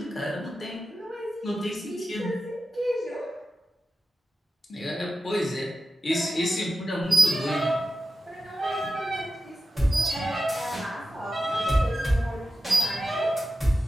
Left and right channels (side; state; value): both; normal; correlation 0.92